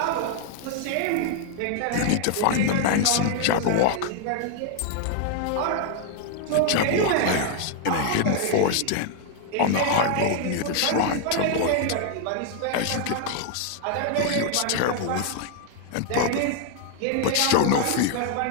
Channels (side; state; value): both; different; correlation 0.00